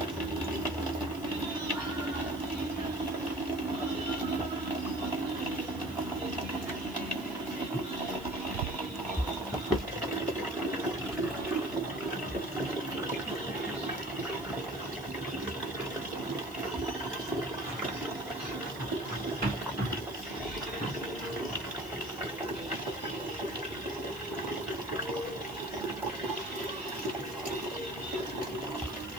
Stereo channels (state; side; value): noise; right; hiss, 20 dB below the sound